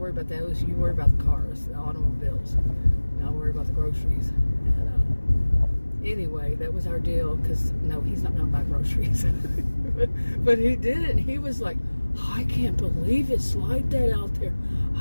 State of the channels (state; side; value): inverted; both; correlation -1.00